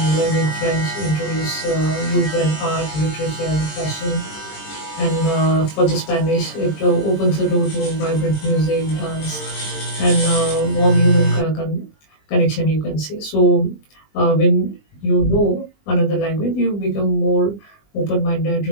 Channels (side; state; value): right; late; 20 ms